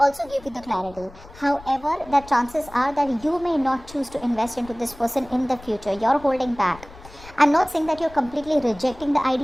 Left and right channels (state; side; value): noise; left; rumble, 20 dB below the sound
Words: give you the clarity. However, the chances are that you may not choose to invest into this person in the future. You're holding back. I'm not saying that you're completely rejecting the